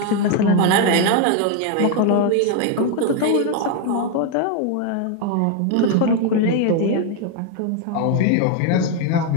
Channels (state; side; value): different; both; correlation 0.01